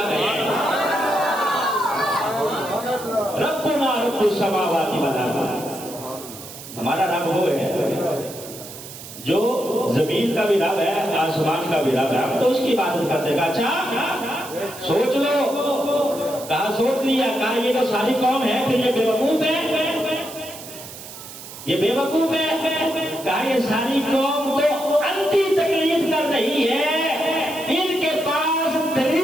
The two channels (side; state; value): right; noise; hiss, 14 dB below the sound